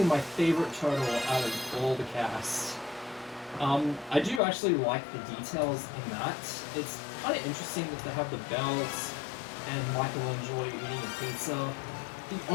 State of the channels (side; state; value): right; drops out; at 4.4 s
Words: my favorite turtle out of all the cast. I do actually like the details in that. It's kind of interesting that they have the belts and Michelangelo eating a pizza. The